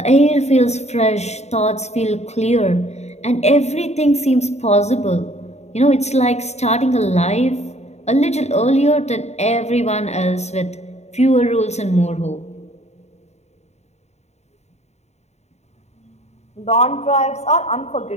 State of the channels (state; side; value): late; right; 0.32 ms